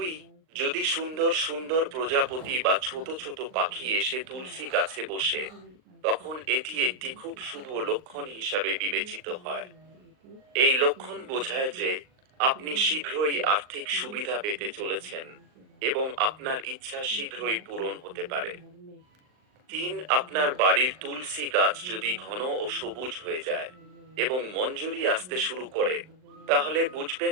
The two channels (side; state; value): left; late; 39 ms